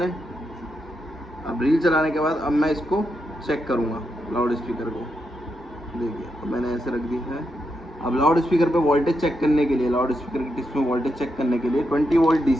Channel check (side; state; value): both; normal; correlation 0.84